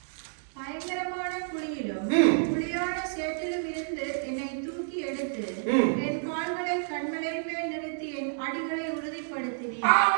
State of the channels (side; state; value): left; silent; digital silence